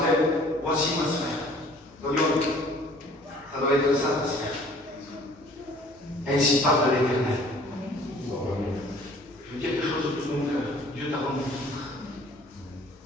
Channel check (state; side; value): normal; both; correlation 0.53